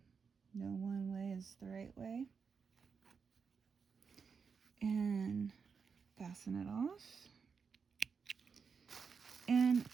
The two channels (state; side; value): quieter; left; 5.8 dB